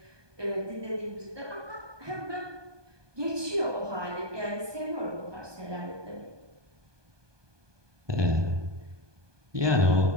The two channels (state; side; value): late; left; 1.2 ms